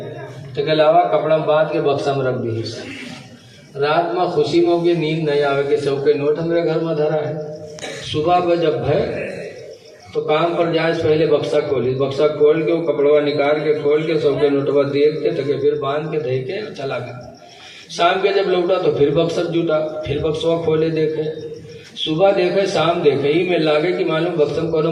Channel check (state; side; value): identical; both; correlation 1.00